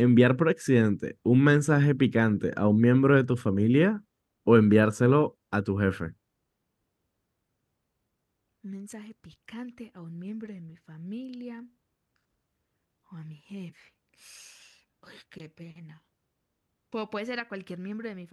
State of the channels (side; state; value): both; identical; correlation 1.00